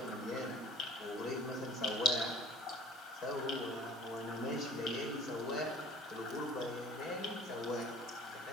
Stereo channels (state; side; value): normal; both; correlation 0.49